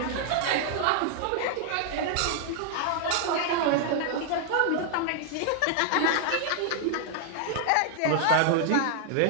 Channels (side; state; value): both; different; correlation 0.00